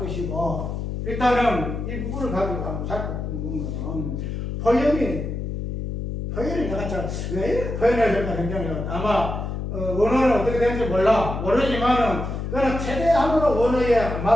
일단은 이 부분을 가지고 한번 살펴보면 표현이 내가 왜 표현해야 될까 굉장히 아마 원어는 어떻게 되는지 모르지만은 그거는 최대한으로 원어에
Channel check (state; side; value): noise; left; hum, 4 dB below the sound